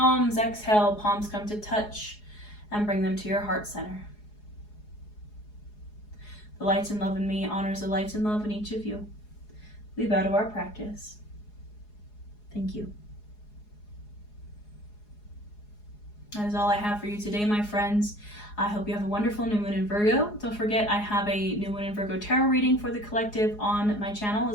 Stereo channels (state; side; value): late; right; 4.8 ms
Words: Exhale, palms come to touch and bring them to your heart center. The light and love in me honors the light and love in each of you. We bow to our practice. Thank you. That is all I have for you today, my friends. I hope you have a wonderful new moon in Virgo. Don't forget, I have a new moon in Virgo tarot reading for the collective on my channel,